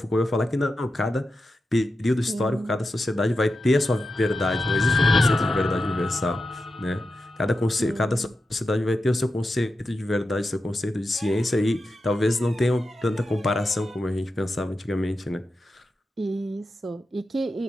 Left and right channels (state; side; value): normal; both; correlation 0.90